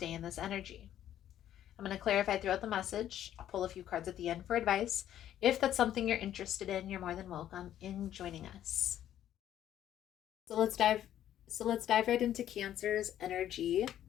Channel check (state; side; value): quieter; right; 11.4 dB